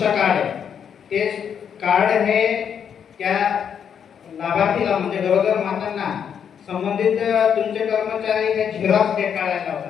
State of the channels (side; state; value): right; quieter; 7.9 dB